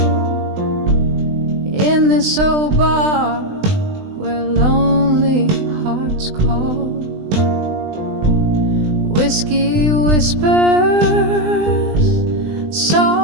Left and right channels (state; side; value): late; left; 20 ms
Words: in this old bar where lonely hearts call. Whiskey whispers